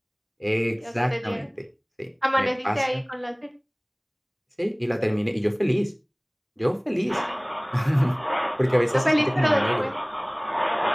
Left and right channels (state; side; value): identical; both; correlation 1.00